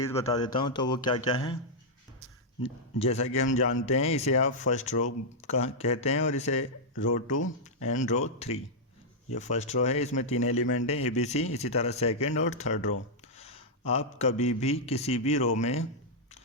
बता देता हूँ, तो वो क्या क्या हैं। जैसा कि हम जानते हैं, इसे आप फर्स्ट रो का कहते हैं और इसे रो 2 एंड रो 3। ये फर्स्ट रो है, इसमें 3 एलिमेंट हैं ABC। इसी तरह सेकंड और थर्ड रो। आप कभी भी किसी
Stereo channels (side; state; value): both; normal; correlation -0.06